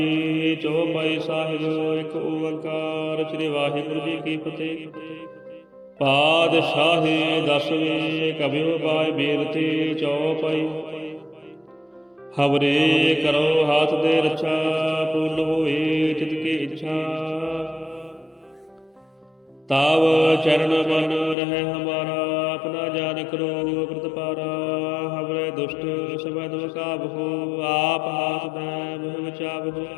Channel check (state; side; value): drops out; right; at 21.4 s